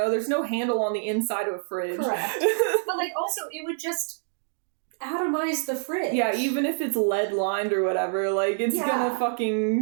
there's no handle on the inside of a fridge. Correct. But like also it would just atomize the fridge. Yeah, even if it's lead lined or whatever, like it's gonna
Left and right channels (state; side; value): silent; left; digital silence